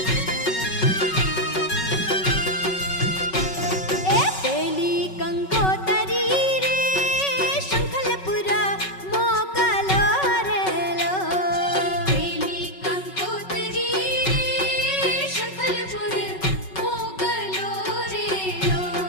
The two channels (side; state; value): right; late; 5.3 ms